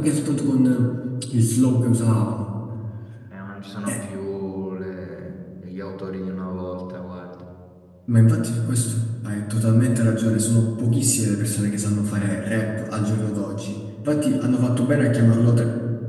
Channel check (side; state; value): both; identical; correlation 1.00